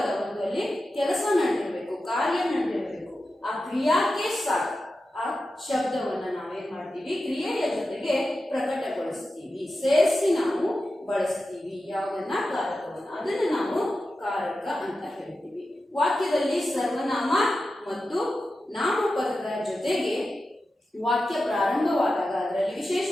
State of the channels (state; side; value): normal; both; correlation 0.92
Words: ಒಂದಲ್ಲಿ ಕೆಲಸ ನಡೆದಿರಬೇಕು, ಕಾರ್ಯ ನಡೆದಿರಬೇಕು, ಆ ಕ್ರಿಯಾಕ್ಕೆ ಸಾಥ್ ಆ ಶಬ್ದವನ್ನ ನಾವೇನ್ ಮಾಡ್ತೀವಿ? ಕ್ರಿಯೆಯ ಜೊತೆಗೆ ಪ್ರಕಟಗೊಳಿಸ್ತೀವಿ, ಸೇರಿಸಿ ನಾವು ಬಳಸ್ತೀವಿ ಯಾವುದನ್ನ? ಕಾರಕವನ್ನ। ಅದನ್ನ ನಾವು ಕಾರಕ ಅಂತ ಹೇಳ್ತೀವಿ। ವಾಕ್ಯದಲ್ಲಿ ಸರ್ವನಾಮ ಮತ್ತು ನಾಮಪದದ ಜೊತೆಗೆ ವಾಕ್ಯ ಪ್ರಾರಂಭವಾದಾಗ ಅದರಲ್ಲಿ